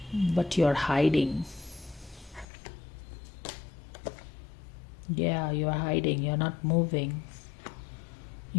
but you're hiding. Yeah, you're hiding, you're not moving.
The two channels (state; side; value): drops out; right; at 2.5 s